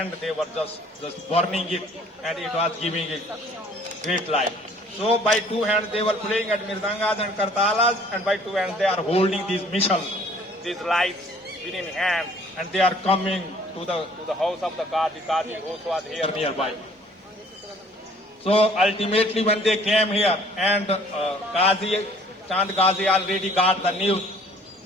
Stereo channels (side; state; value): both; normal; correlation 0.55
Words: they were just burning it, and it was giving a great light. So by two hands they were playing at mirdangas and kartalas, and by two hands they are holding these mishals, these lights within hand, and they are coming to the house of the Qazi. Qazi also was here nearby. So ultimately when they came here, and Chand Qazi already got the news